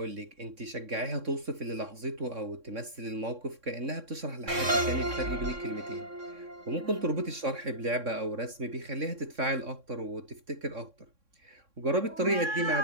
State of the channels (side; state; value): left; late; 3.6 ms